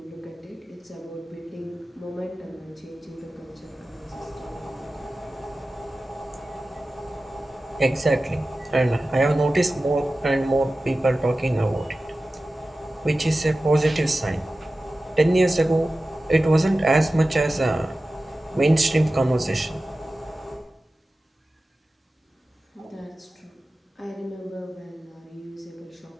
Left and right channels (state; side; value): normal; both; correlation 0.95